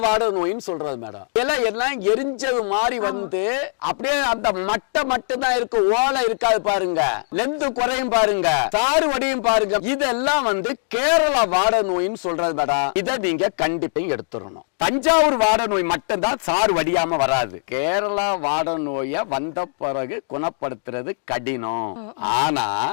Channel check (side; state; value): right; silent; digital silence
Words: வாட நோயின்னு சொல்றது மேடம். எல்லாம் எரிஞ்சது மாதிரி வந்து அப்படியே அந்த மட்டை மட்டும் தான் இருக்கு, ஓலை இருக்காது பாருங்க, லென்த் குறையும் பாருங்க, சாறு வடியும் பாருங்க. இதெல்லாம் வந்து கேரளா வாட நோயின்னு சொல்றது மேடம். இதை நீங்க கண்டிப்பா எடுத்துடணும். தஞ்சாவூர் வாட நோய் மட்டும்தான் சாறு வடியாம வராது. கேரளா வாட நோய வந்த பிறகு குணப்படுத்துறது கடினம், ஆனா